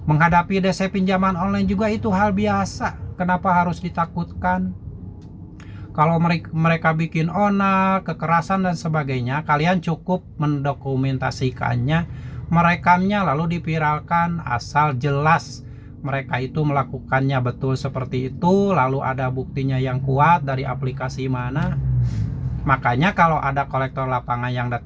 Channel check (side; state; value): both; identical; correlation 1.00